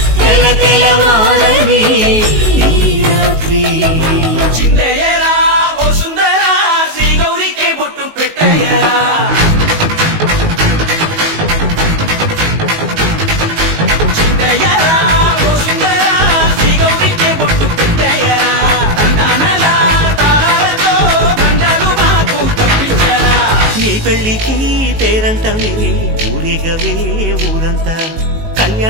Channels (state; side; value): late; left; 19 ms